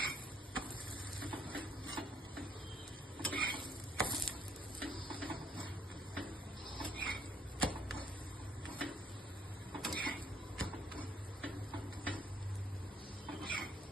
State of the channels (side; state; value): both; normal; correlation 0.65